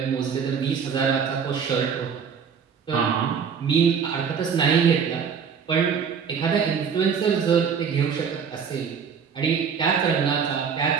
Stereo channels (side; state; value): left; quieter; 6.7 dB